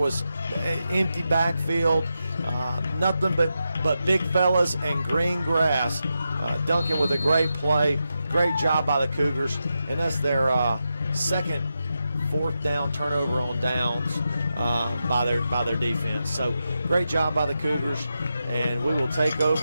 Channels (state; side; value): inverted; both; correlation -0.87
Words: empty backfield, nothing but big fellas and green grass. Duncan with a great play, great job by the Cougars, and that's their second 4th down turnover on downs by their defense. So great job by the Cougars, and we will take